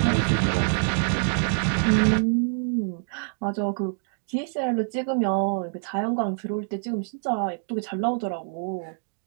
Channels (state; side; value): silent; left; digital silence